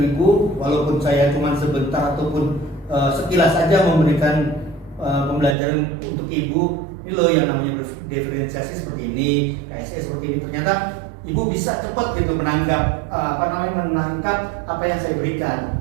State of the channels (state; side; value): drops out; left; at 5.6 s